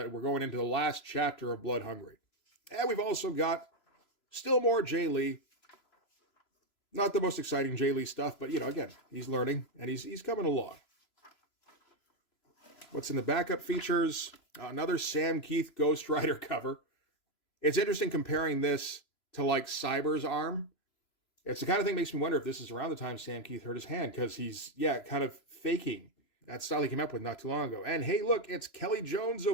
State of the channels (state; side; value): late; right; 3.0 ms